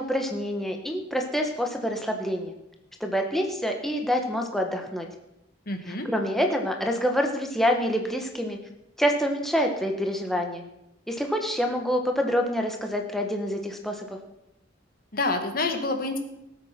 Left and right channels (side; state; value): both; normal; correlation 0.61